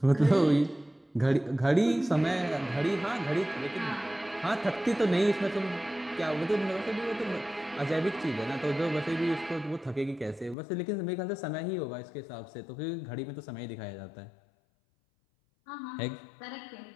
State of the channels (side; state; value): right; drops out; at 10.6 s